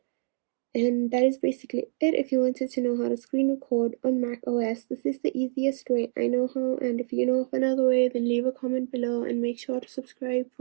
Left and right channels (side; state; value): left; silent; 60 dB below the other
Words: And that is basically it. If you wanted to know how to screen record on Mac OS, this is the easiest way I know how. And if you know of another way, then leave a comment below and make sure to subscribe